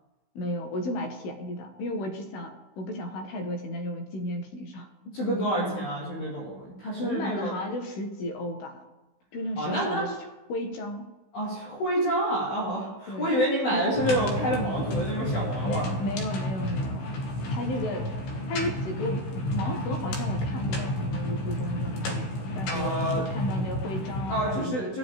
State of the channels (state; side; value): late; right; 16 ms